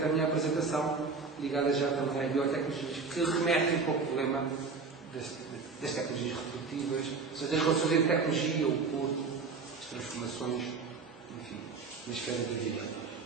a minha apresentação, ligada já também às biotecnologias, que remetem para o problema das tecnologias reprodutivas, ou seja, das relações entre tecnologia, o corpo, as transformações, enfim, na esfera da vida.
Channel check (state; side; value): quieter; left; 4.6 dB